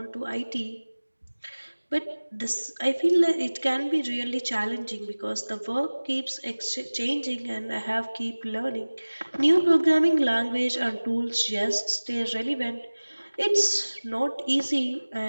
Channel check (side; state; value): both; inverted; correlation -1.00